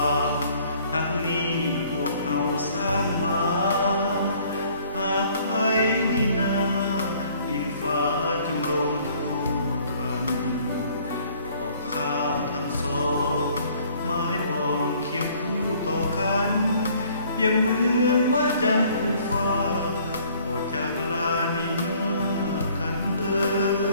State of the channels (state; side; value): inverted; both; correlation -0.58